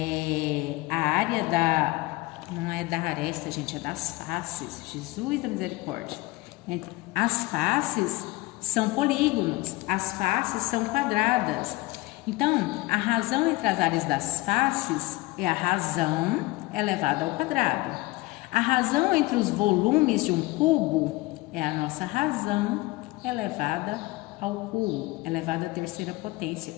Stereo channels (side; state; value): right; quieter; 21.0 dB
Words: a área não é da aresta, gente, é das faces. Jesus da misericórdia. As faces são polígonos, as faces são quadradas. Então, a razão entre as áreas das faces é a razão elevada ao quadrado. A razão entre os volumes de um cubo é a nossa razão elevada ao cubo, elevada à terceira potência,